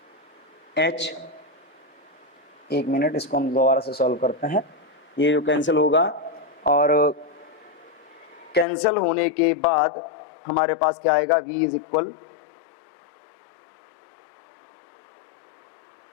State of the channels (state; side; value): drops out; right; at 8.7 s